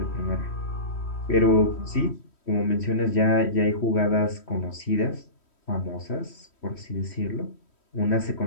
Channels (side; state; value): right; late; 3.1 ms